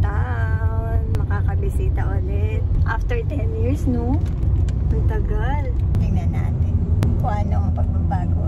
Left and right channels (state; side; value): identical; both; correlation 1.00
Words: Makakabisita ulit. After 10 years, no? Ang tagal. Tingnan natin kung ano ang pagbabago